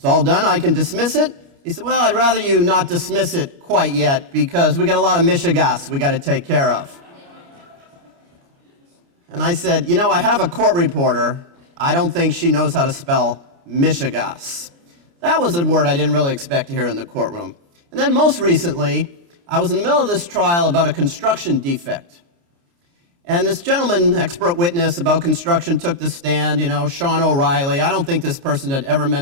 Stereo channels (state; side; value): late; left; 29 ms